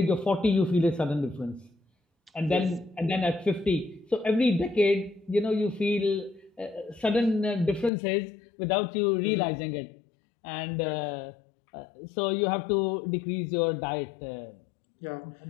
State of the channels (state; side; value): drops out; right; at 7.9 s